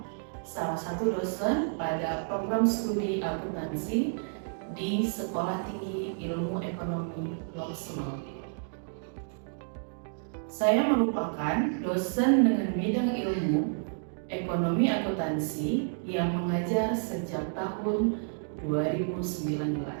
salah satu dosen pada program studi akuntansi di Sekolah Tinggi Ilmu Ekonomi Loksmawe. Saya merupakan dosen dengan bidang ilmu ekonomi akuntansi yang mengajar sejak tahun 2019.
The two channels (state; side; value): silent; left; digital silence